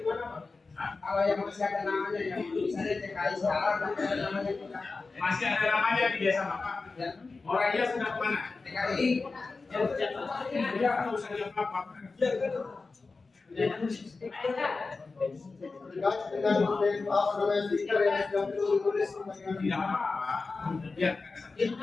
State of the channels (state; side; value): quieter; right; 4.0 dB